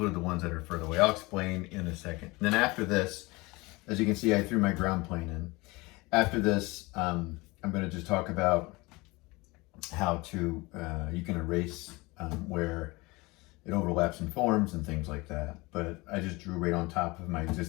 the ones that are further away. I'll explain in a second. And then after this, as you can see, I threw my ground plane in. After this, I'm going to just talk about how to, you can erase where it overlaps and forms and things like that. But I just drew right on top of my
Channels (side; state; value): right; quieter; 23.6 dB